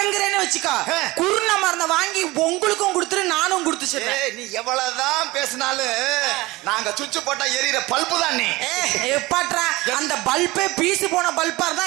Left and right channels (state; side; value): quieter; left; 20.8 dB